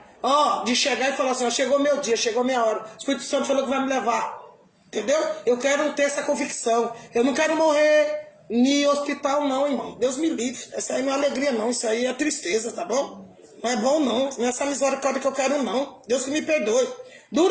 Ó, de chegar e falar assim, ó, chegou meu dia, chegou minha hora. O Espírito Santo falou que vai me levar. Entendeu? Eu quero ter essa convicção. Eu não quero morrer em hospital, não, irmão. Deus me livre. Essa aí não é alegria, não. Isso aí é tristeza, tá bom? Não é bom, não. Não é essa misericórdia que eu quero, não. Deus que me perdoe.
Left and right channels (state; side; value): identical; both; correlation 1.00